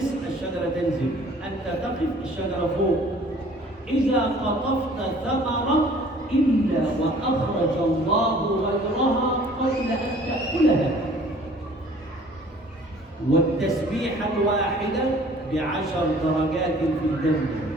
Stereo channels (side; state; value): both; normal; correlation 0.52